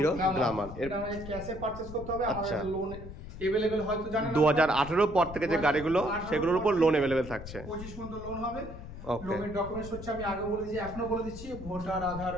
গ্ল্যামার। এটা আমাদের ক্যাশে পারচেজ করতে হবে। আমাদের লোন अवेलेबल হয়তো জানেন 2018 পর থেকে যে গাড়িগুলো সেগুলোর উপর লোন अवेलेबल থাকছে। 25 পর্যন্ত লোন হবে। লোনের ডকুমেন্টস হচ্ছে, আমি আগে বলে দিয়েছি, এখনো বলে দিচ্ছি, voter, Aadhaar,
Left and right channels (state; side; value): noise; left; rumble, 12 dB below the sound